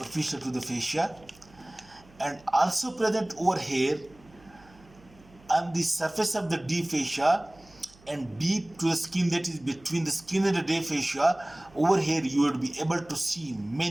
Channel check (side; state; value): right; noise; hum, 26 dB below the sound